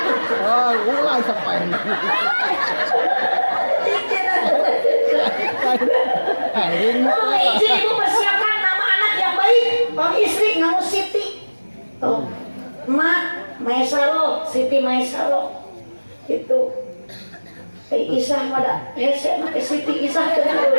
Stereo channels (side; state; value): both; inverted; correlation -1.00